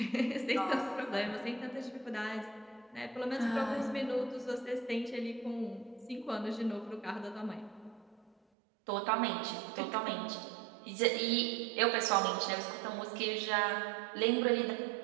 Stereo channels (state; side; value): drops out; left; at 8.3 s